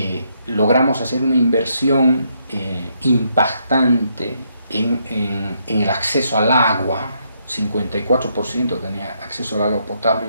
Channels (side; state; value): both; inverted; correlation -0.75